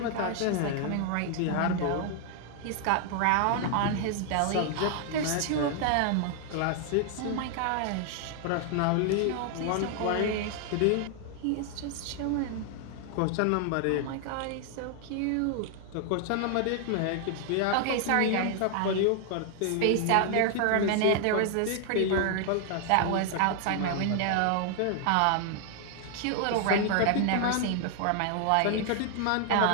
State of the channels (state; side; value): different; both; correlation 0.00